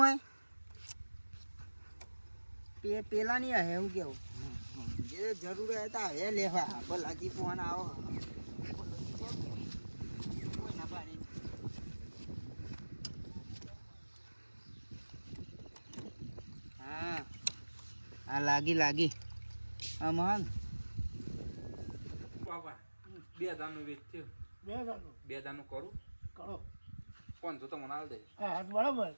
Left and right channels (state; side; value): inverted; both; correlation -1.00